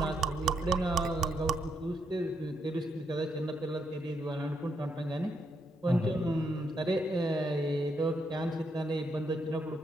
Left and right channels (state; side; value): normal; both; correlation 0.78